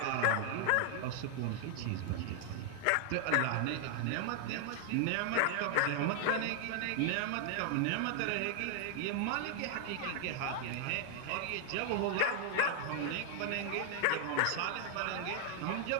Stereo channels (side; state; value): both; different; correlation 0.00